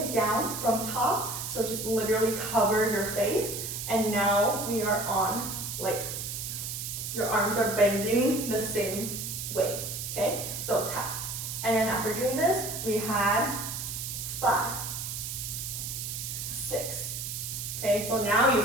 down from top. So just literally cover your face. And now we are on, like, your arms are bending the same way, okay? So tap. And then after doing this, we had 5, 6. Okay, so now you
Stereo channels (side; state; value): right; noise; hiss, 5 dB below the sound